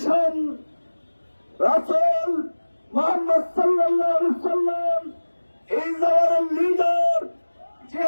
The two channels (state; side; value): inverted; both; correlation -1.00